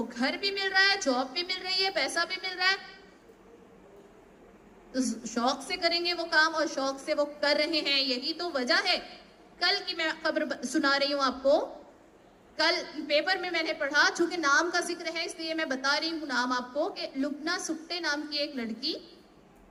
گھر بھی مل رہا ہے، جاب بھی مل رہی ہے، پیسہ بھی مل رہا ہے، تو شوق سے کریں گے وہ کام، اور شوق سے وہ کر رہے ہیں. یہی تو وجہ ہے. کل کی میں خبر سنا رہی ہوں آپ کو، کل پیپر میں نے پڑھا، چونکہ نام کا ذکر ہے اس لیے میں بتا رہی ہوں نام آپ کو، کہ لبنہ سکٹے نام کی ایک لڑکی،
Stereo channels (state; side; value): identical; both; correlation 1.00